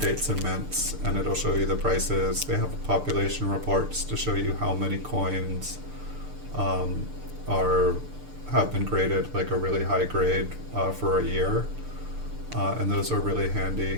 dates and mints, and it'll show you the prices. They have population reports to show you how many coins have been graded like a really high grade for a year, and those are really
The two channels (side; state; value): left; late; 6.8 ms